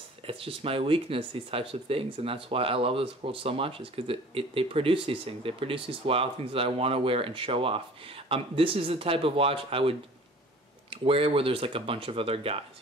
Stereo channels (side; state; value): both; normal; correlation 0.46